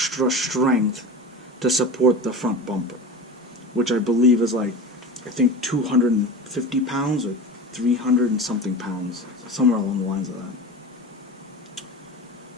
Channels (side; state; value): both; normal; correlation 0.30